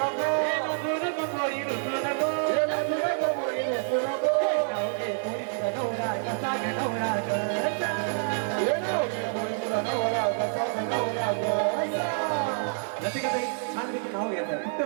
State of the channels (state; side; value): silent; left; digital silence